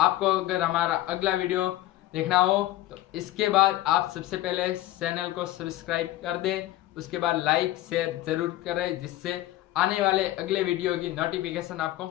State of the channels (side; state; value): right; quieter; 15.6 dB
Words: अगर हमारा अगला वीडियो देखना हो तो इसके बाद आप सबसे पहले चैनल को सब्सक्राइब कर दें, उसके बाद लाइक शेयर जरूर करें, जिससे आने वाले अगले वीडियो की नोटिफिकेशन